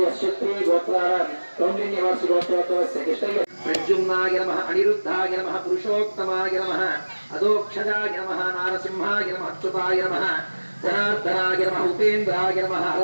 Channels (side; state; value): both; inverted; correlation -1.00